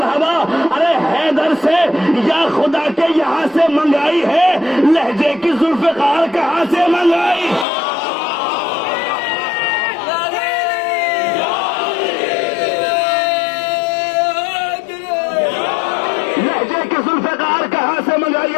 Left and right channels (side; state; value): right; drops out; at 7.7 s